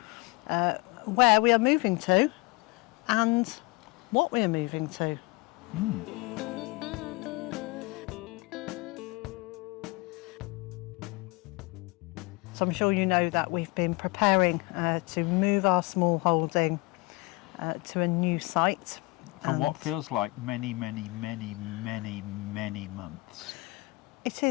where we are moving to and what we are moving to. So I'm sure you know that we've been preparing to move our small holding to a new site. For what feels like many months. It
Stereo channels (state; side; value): quieter; right; 24.7 dB